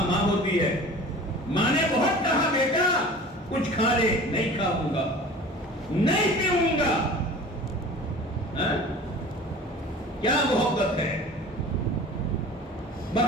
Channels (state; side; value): normal; both; correlation 0.41